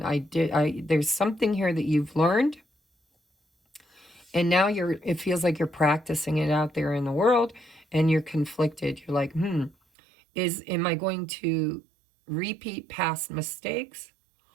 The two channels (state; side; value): drops out; left; at 9.8 s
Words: There's something here that you've learned, and now it feels like you're practicing it out there in the world, and you're conflicted. You're like, am I going to repeat past mistakes,